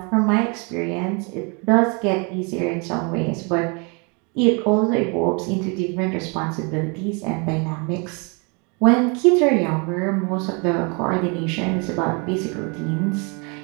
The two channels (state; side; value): quieter; left; 32.6 dB